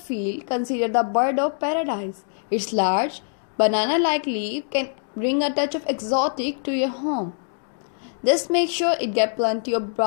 consider the bird of paradise. Its large, banana-like leaf can bring a touch of exotic to your home. Just make sure it gets plenty of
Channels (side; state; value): right; silent; digital silence